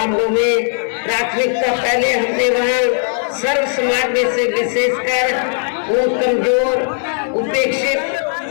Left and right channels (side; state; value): right; silent; 68 dB below the other